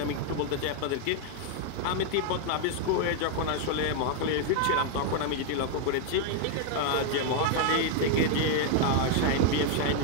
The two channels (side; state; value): both; different; correlation 0.00